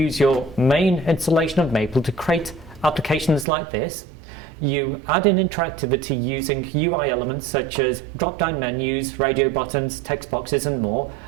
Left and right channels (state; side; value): drops out; left; at 3.5 s